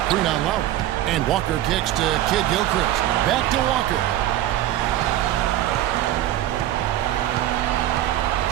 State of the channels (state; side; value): quieter; left; 13.3 dB